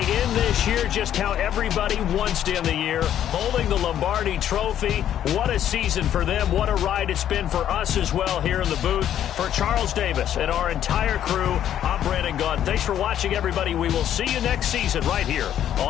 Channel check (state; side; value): quieter; right; 10.6 dB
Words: This year, just how everybody wants to end the year, holding the Lombardi Trophy. What a season for them. What a ride it's been for us as well here in the booth. For Charles Davis and our entire crew, I'm Brandon Gaudin. Thanks for watching, everybody. We will see you next season right here